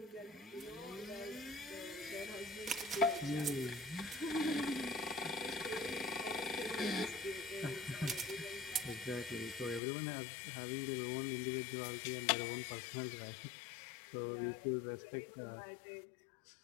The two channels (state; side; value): drops out; right; at 9.8 s